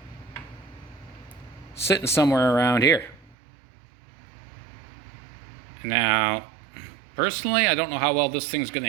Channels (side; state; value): left; drops out; at 3.4 s